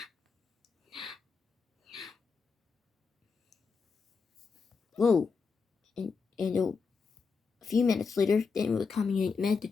Whoa! And a few minutes later, they were coming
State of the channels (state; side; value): quieter; right; 5.1 dB